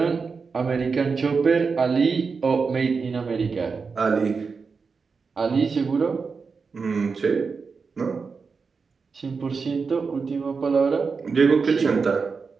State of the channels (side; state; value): left; quieter; 5.0 dB